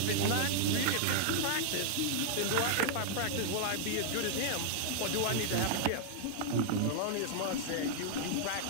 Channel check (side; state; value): both; different; correlation 0.00